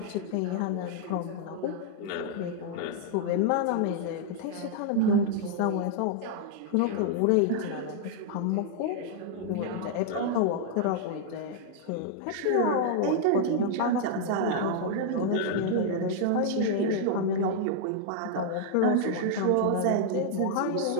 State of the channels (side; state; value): both; different; correlation -0.01